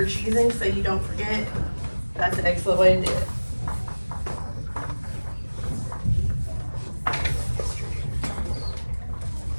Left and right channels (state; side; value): inverted; both; correlation -1.00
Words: choosing so you don't forget, that's an excellent way to do it.